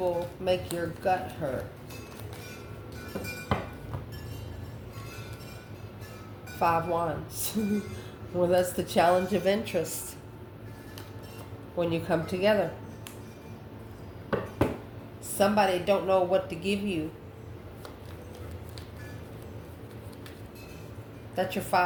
make your gut hurt. 5 Wands. Well, that's the challenge of interest when you come together. Somebody don't know what to give you. That's your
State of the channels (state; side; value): identical; both; correlation 1.00